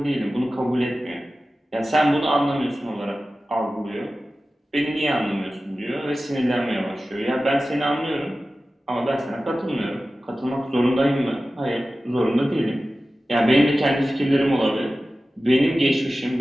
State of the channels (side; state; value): both; normal; correlation 0.95